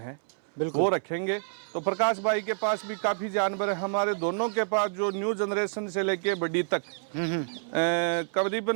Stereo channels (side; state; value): left; silent; 59 dB below the other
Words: वो रखेंगे। तो प्रकाश भाई के पास भी काफ़ी जानवर है, हमारे दोनों के पास जो न्यू जनरेशन से लेके बड़ी तक